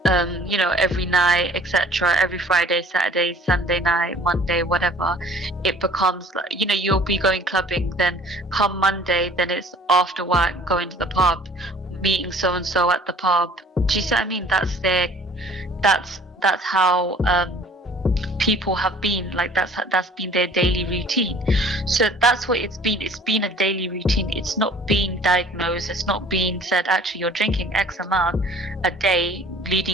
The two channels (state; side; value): normal; both; correlation 0.51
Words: you know, every night, etc. Every Friday, Saturday, Sunday night, Monday, whatever. It becomes like, you know, you'll be going clubbing, then come Monday, then it's after work, going to the pub, meeting so and so at the pub. Do you see what I mean? That's how people have been, like that's been their daily routine. So that's what it's been. It's been a daily routine. It's not being diagnosed. It's not being said, actually, you're drinking X amount a day,